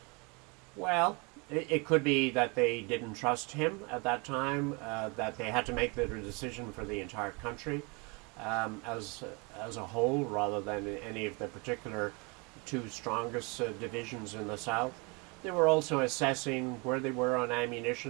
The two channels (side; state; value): left; quieter; 30.1 dB